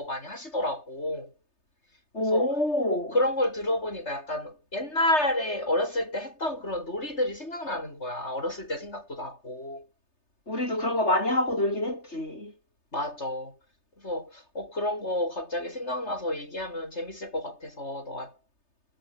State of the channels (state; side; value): late; right; 3.3 ms